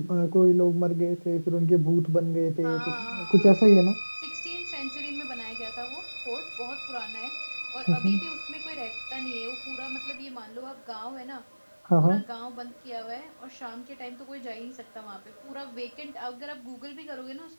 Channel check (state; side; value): inverted; both; correlation -1.00